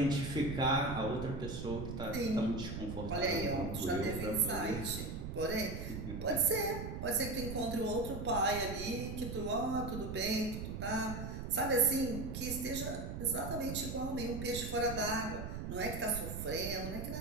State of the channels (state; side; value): noise; right; rumble, 6 dB below the sound